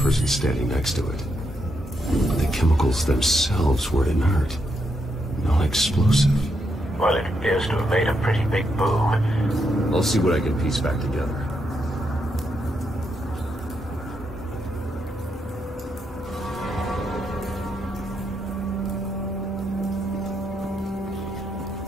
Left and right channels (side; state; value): both; normal; correlation 0.80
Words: person standing next to it. But the chemicals themselves were inert, non-explosive. Well, it appears to have made a pretty big boom. I'll see what I can piece back together.